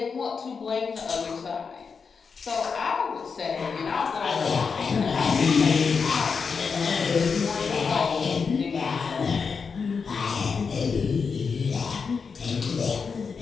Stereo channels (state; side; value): quieter; right; 5.5 dB